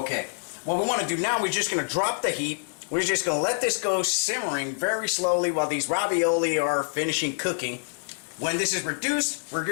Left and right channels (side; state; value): right; silent; digital silence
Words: what we want to do now, we're just going to drop the heat. We're just going to let this go simmering very slowly while these ravioli are finishing cooking. When this is reduced, we're